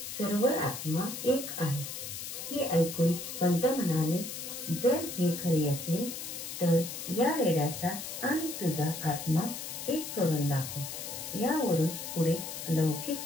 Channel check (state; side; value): noise; left; hiss, 7 dB below the sound